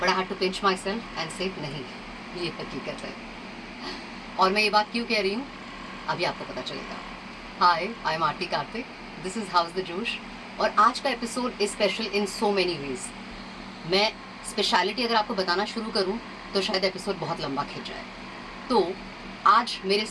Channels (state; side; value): identical; both; correlation 1.00